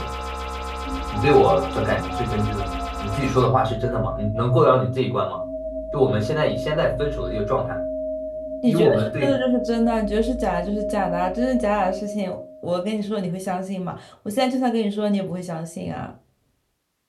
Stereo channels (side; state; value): both; identical; correlation 1.00